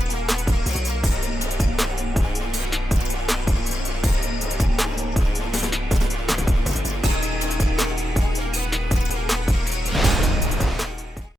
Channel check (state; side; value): normal; both; correlation 0.88